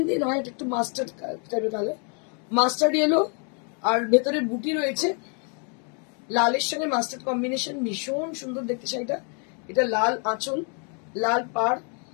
নয়, এটা একটু মাস্টার্ড টাইপের কালার, মাস্টার্ড ইয়েলো, আর ভেতরে বুটি রয়েছে লালের সঙ্গে মাস্টার্ড কম্বিনেশন, ভীষণ সুন্দর দেখতে শাড়িটা। এটা লাল আঁচল, লাল পাড়,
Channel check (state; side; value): quieter; right; 39.9 dB